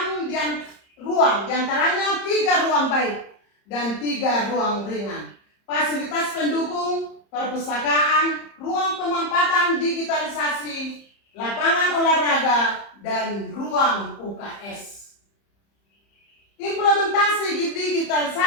ruang, diantaranya 3 ruang baik dan 3 ruang ringan. Fasilitas pendukung, perpustakaan, ruang pemampatan digitalisasi, lapangan olahraga, dan ruang UKS. Implementasi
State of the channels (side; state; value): right; late; 30 ms